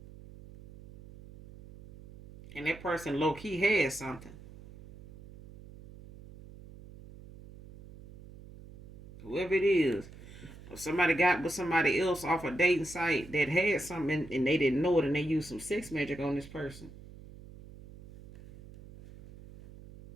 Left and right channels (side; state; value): right; noise; hum, 18 dB below the sound